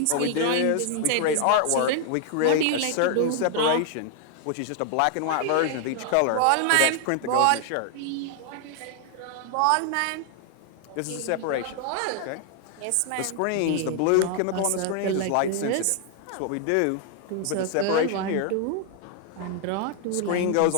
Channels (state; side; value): different; both; correlation 0.00